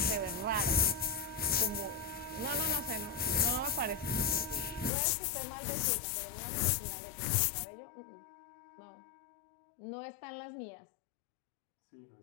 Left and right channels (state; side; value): drops out; right; at 4.9 s